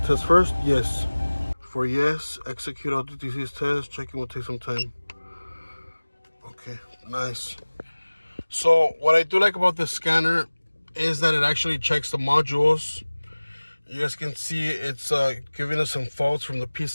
first? Yes. For yes, execute all DTCs test. Checking will take some time. Okay, nice. So what I do like about this scanner is that it actually checks the modules. You guys can see it's giving us some faults from the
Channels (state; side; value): inverted; both; correlation -1.00